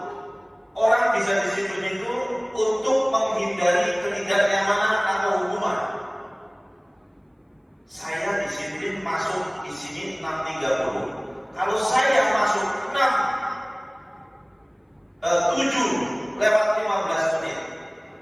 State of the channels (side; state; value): both; identical; correlation 1.00